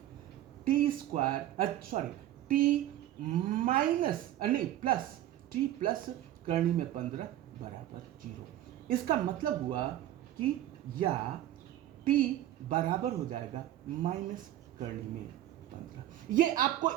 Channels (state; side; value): quieter; left; 13.2 dB